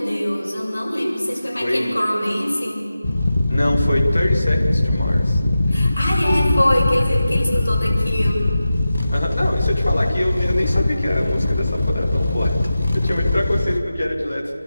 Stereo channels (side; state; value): both; inverted; correlation -0.92